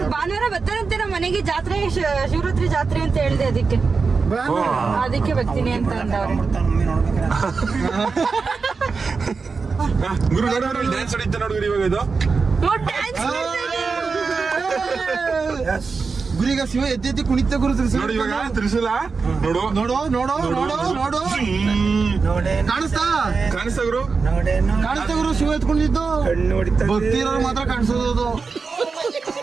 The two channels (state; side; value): quieter; left; 4.7 dB